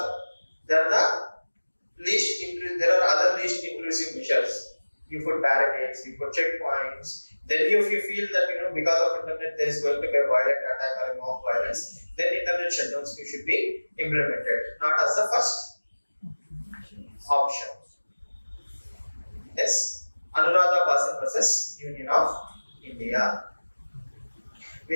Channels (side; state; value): both; inverted; correlation -1.00